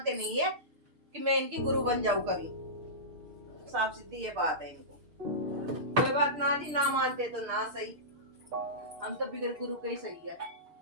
नहीं है कि मैं इनकी गुरु बन जाऊं कभी। साफ सीधी ये बात है इनको। कोई बात ना जी, ना मानते तो ना सही, हम तो बिगड़ गुरु के ही सही है।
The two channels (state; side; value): late; left; 6.6 ms